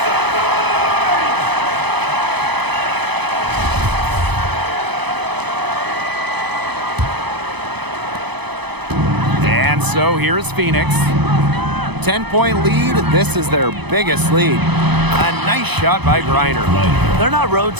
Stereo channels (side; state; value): left; late; 0.99 ms